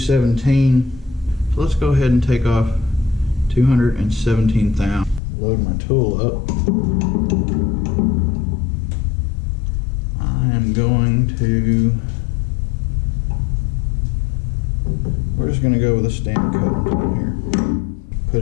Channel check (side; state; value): right; drops out; at 5.2 s